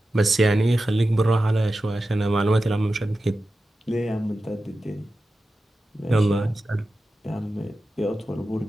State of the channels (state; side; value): normal; both; correlation 0.93